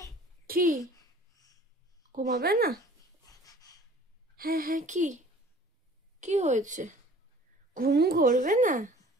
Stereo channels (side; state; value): both; normal; correlation 0.49